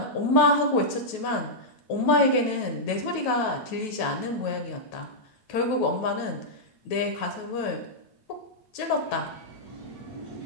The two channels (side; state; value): right; late; 9.2 ms